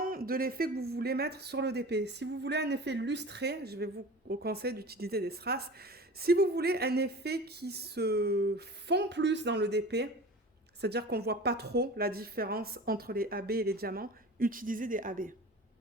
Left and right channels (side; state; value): both; normal; correlation 0.36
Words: de l'effet que vous voulez mettre sur le DP. Si vous voulez un effet lustré, je vais vous conseiller d'utiliser des strass. Si vous voulez un effet qui se fond plus dans le DP, c'est-à-dire qu'on ne voit pas trop la différence entre les AB et les diamants, utilisez des AB.